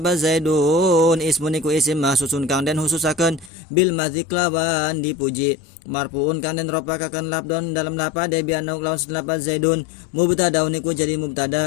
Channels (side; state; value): right; drops out; at 3.5 s